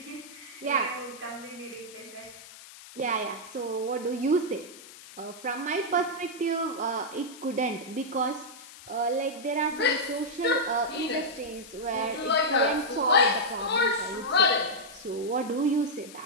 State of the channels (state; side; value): noise; left; hiss, 17 dB below the sound